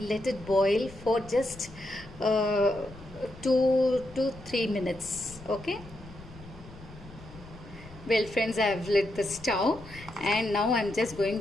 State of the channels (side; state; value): left; noise; rumble, 18 dB below the sound